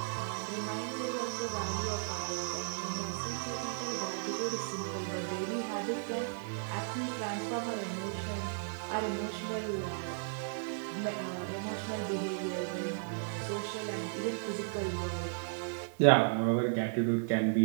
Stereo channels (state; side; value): silent; left; digital silence